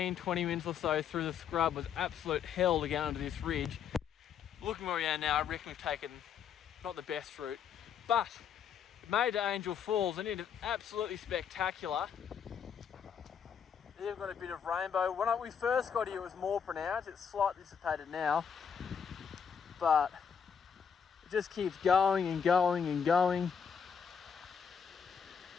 minutes or so through the scrub was absolute hell to get onto this ridge. Looking where we are now, I reckon we've taken not the best route, but it made to Angel Falls, and it is absolutely spectacular. They've got a bit of rainbow. When we first got here, it was more pronounced. It's slightly dissipated now, but it just keeps going and going and going.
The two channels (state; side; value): quieter; right; 7.3 dB